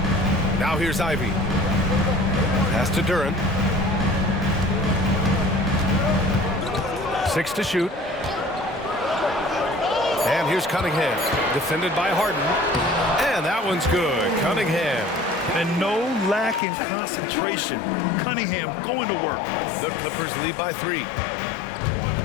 Now here's Ivy. Pass to Duren. 6 to shoot. And here's Cunningham, defended by Harden. And that one's good. Cunningham. And no lack in concentration. Cunningham going to work. The Clippers lead by 3.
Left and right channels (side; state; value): right; drops out; at 16.6 s